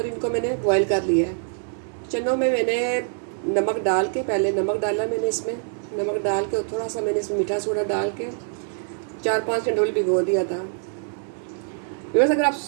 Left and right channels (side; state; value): left; silent; digital silence